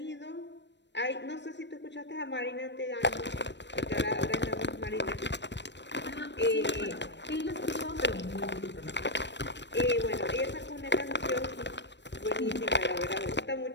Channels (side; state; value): right; late; 0.52 ms